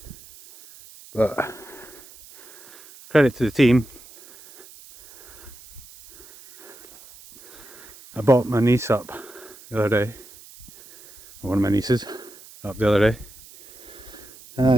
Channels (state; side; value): noise; right; hiss, 21 dB below the sound